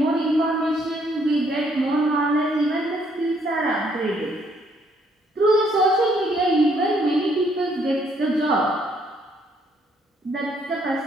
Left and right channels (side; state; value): both; normal; correlation 0.68